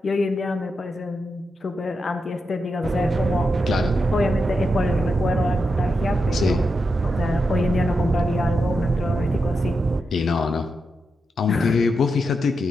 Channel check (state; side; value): normal; both; correlation 0.86